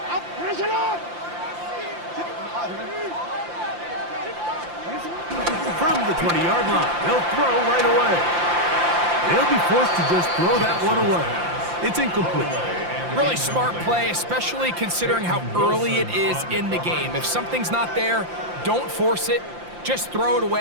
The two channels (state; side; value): late; left; 5.8 ms